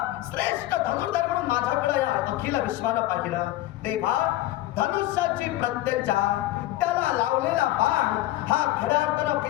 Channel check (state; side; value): quieter; right; 15.9 dB